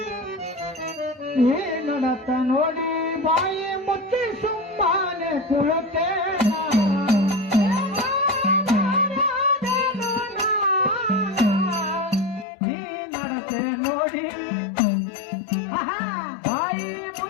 ಏ ನಡತ ನೋಡಿ ಬಾಯಿ ಮುಚ್ಚಿ ಸುಮ್ಮನೆ ಕುಳುತ್ತೇನ. ಈ ನಡತೆ ನೋಡಿ ಬಾಯಿ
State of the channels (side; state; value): right; drops out; at 12.5 s